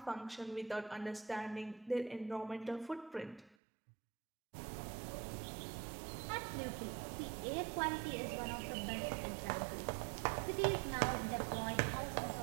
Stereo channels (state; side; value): drops out; left; at 3.6 s